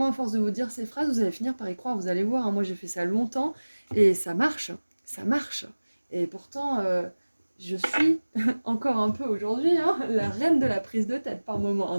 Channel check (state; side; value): inverted; both; correlation -1.00